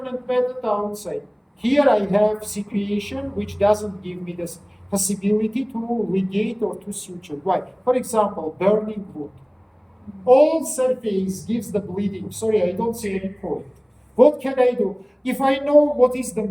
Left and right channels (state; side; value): identical; both; correlation 1.00